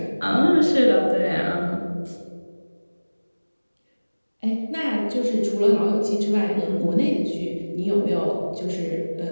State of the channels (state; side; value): inverted; both; correlation -1.00